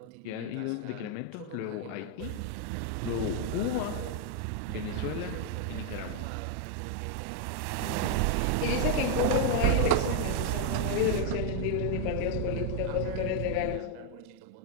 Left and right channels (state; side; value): different; both; correlation 0.00